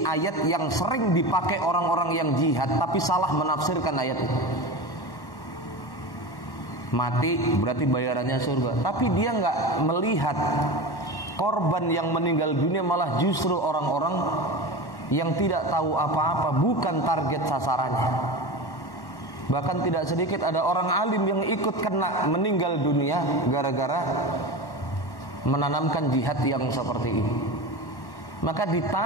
ayat yang sering dipakai orang-orang yang jihad tapi salah menafsirkan ayat itu. Mati berarti bayarannya surga, tapi dia nggak melihat korban yang meninggal dunia malah justru orang-orang yang tidak tahu apa-apa, bukan target sasarannya. Bahkan tidak sedikit ada orang alim yang ikut kena meninggal dunia gara-gara menanamkan jihad yang seperti ini. Maka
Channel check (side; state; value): right; late; 1.1 ms